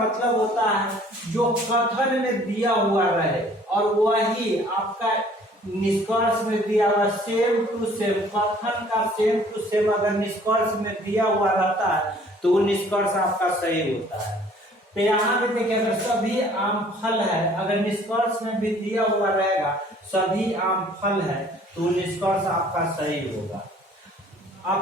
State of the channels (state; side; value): normal; both; correlation 0.55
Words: होता है जो कथन में दिया हुआ रहे और वही आपका निष्कर्ष में दिया हुआ सेम टू सेम, कथन का सेम टू सेम अगर निष्कर्ष में दिया हुआ रहता है तो वो निष्कर्ष आपका सही होता है। तो यहाँ पे देखिए अगर सभी आम फल है, अगर निष्कर्ष में भी दिया हुआ रहेगा सभी आम फल है, तो निष्कर्ष आपका सही होगा।